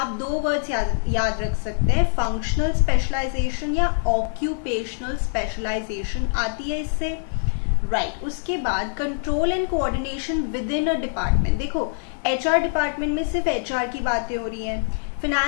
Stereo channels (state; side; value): silent; right; 63 dB below the other